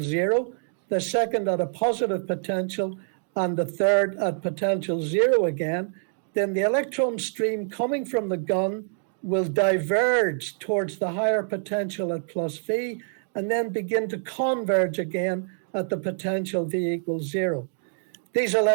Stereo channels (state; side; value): silent; left; digital silence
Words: 0, the second at a positive potential, and the third at potential 0 again, then the electron stream coming from the gun will diverge towards the higher potential at plus V, and then begin to converge again at the potential V equals 0. These